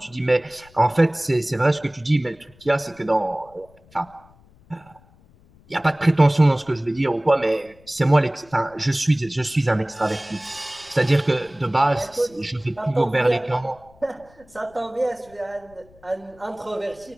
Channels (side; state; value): left; noise; rumble, 28 dB below the sound